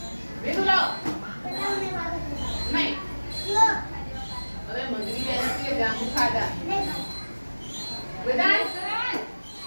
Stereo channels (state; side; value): inverted; both; correlation -1.00